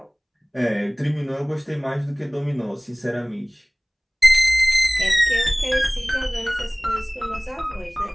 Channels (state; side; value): identical; both; correlation 1.00